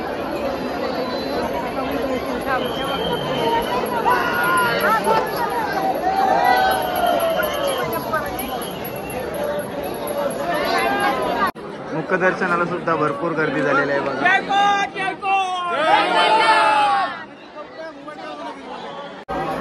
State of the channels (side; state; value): both; identical; correlation 1.00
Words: मुखदर्शनाला सुद्धा भरपूर गर्दी झालेली आहे बघा.